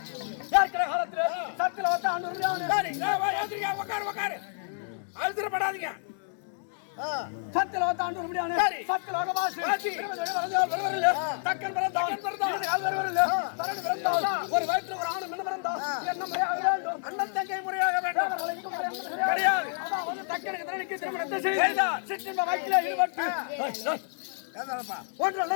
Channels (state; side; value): silent; right; digital silence